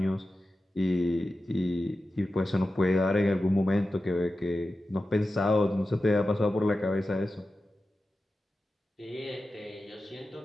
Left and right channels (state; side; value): normal; both; correlation 0.93